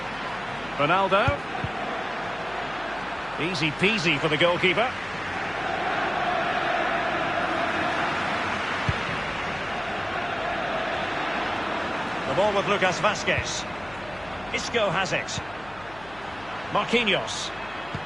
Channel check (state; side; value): noise; left; hum, 20 dB below the sound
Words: Ronaldo. Easy peasy for the goalkeeper. The ball with Lucas Vazquez. Isco has it. Marquinhos.